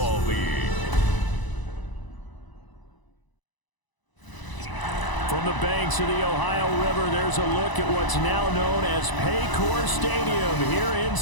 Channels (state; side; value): late; right; 1.0 ms